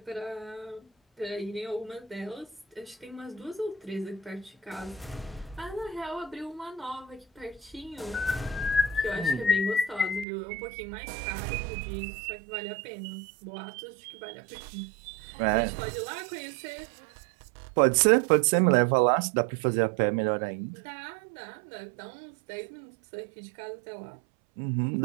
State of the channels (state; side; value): drops out; left; at 10.2 s